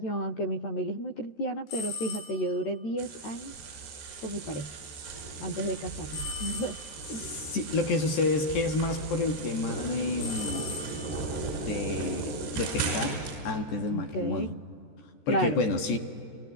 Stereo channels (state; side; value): late; right; 14 ms